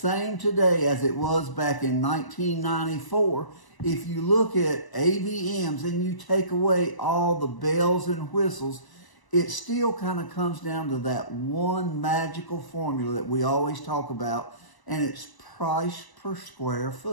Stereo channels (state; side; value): late; right; 1.0 ms